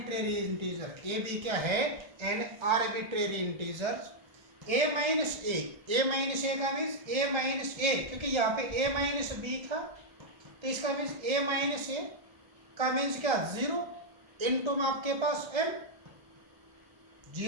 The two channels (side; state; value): left; late; 1.3 ms